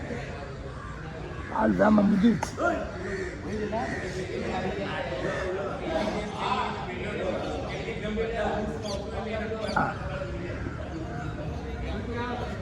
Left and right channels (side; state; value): both; identical; correlation 1.00